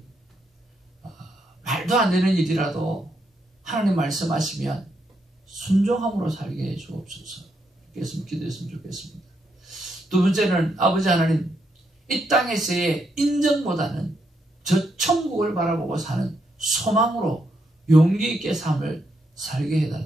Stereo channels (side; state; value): both; normal; correlation 0.79